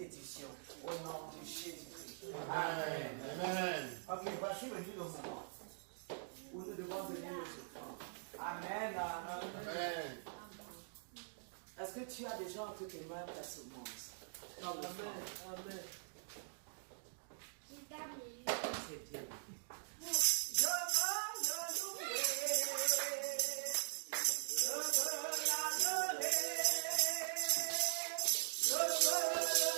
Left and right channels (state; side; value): silent; left; digital silence